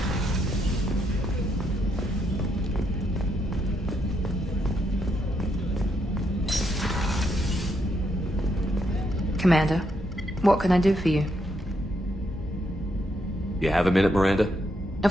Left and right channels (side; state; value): both; normal; correlation 0.77